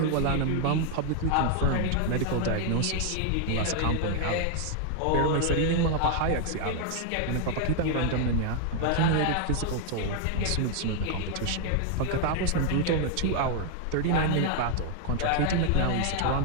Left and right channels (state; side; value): different; both; correlation 0.00